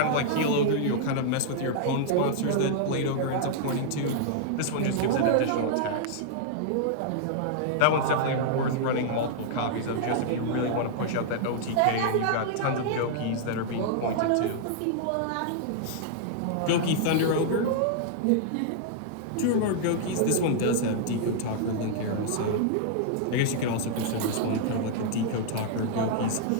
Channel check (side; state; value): both; different; correlation -0.01